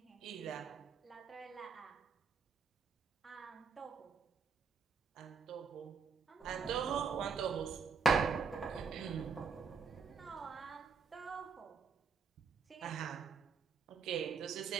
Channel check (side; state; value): left; quieter; 5.7 dB